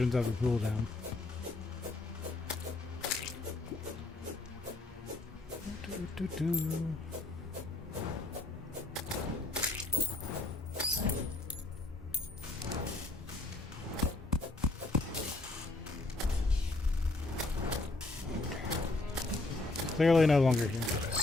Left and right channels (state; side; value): quieter; right; 3.1 dB